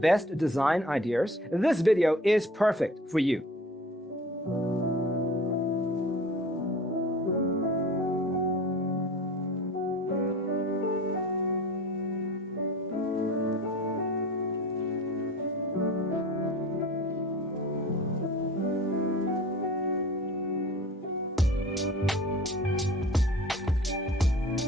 design ideas? This video is perfect for you.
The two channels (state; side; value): normal; both; correlation 0.42